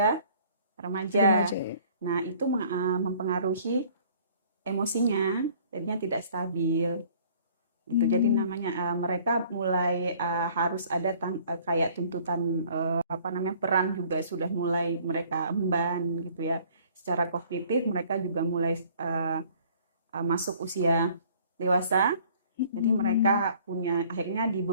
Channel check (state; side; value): inverted; both; correlation -0.55